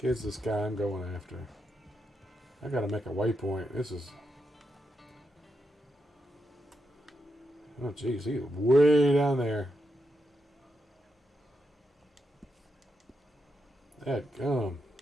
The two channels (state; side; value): normal; both; correlation 0.85